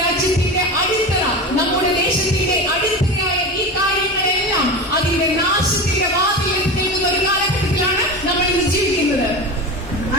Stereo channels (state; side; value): normal; both; correlation 0.26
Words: രാജ്യത്തിന്റെ അടിത്തറ, നമ്മുടെ ദേശത്തിന്റെ അടിത്തറയായ ഈ കാര്യങ്ങളെല്ലാം അതിന്റെ നാശത്തിന്റെ വാതിലിൽ നിൽക്കുന്ന ഒരു കാലഘട്ടത്തിലാണ് നമ്മൾ ഇന്ന് ജീവിക്കുന്നത്.